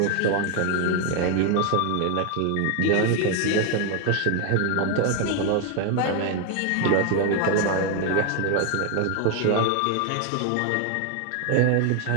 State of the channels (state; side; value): different; both; correlation 0.01